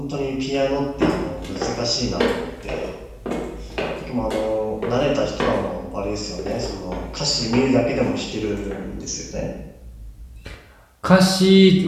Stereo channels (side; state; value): both; identical; correlation 1.00